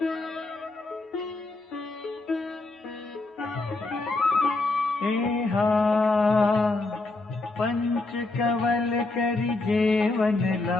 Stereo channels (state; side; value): quieter; right; 3.2 dB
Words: एहा पंच कवल करि जेवन